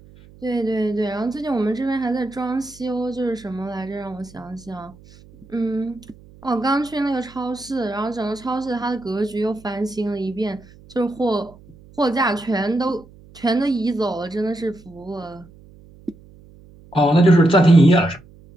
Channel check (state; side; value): noise; right; hum, 23 dB below the sound